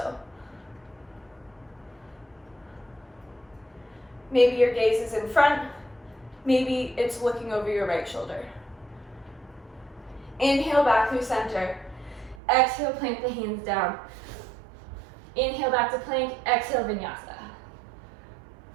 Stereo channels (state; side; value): drops out; left; at 12.4 s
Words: Maybe your gaze is in front, maybe it's looking over your right shoulder. Inhale back through center. Exhale, plank the hands down. Inhale back to plank, exhale, vinyasa.